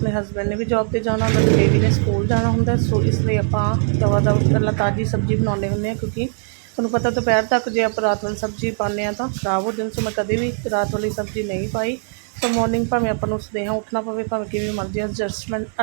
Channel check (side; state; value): left; silent; 65 dB below the other